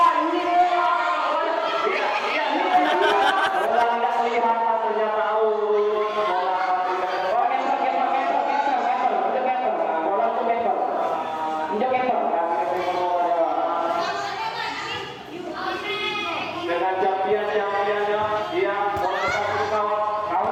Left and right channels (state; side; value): identical; both; correlation 1.00